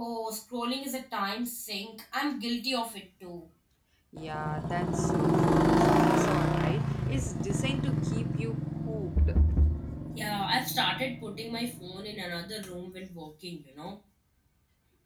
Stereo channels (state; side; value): identical; both; correlation 1.00